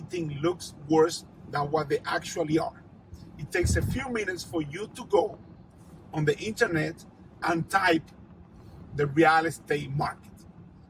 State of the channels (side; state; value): both; identical; correlation 1.00